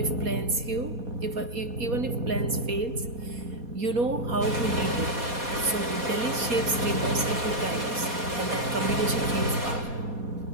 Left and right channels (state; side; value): late; left; 4.2 ms